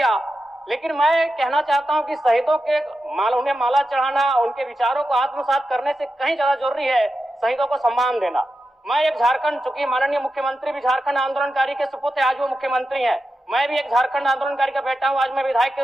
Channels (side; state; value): both; normal; correlation 0.90